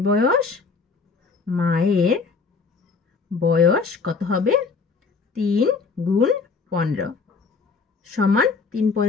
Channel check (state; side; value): quieter; right; 4.7 dB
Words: বয়স কত হবে? 3 গুণ 15 সমান 3